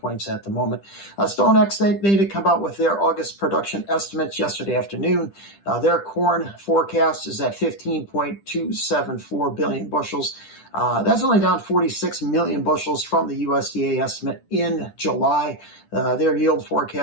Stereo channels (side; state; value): right; late; 10 ms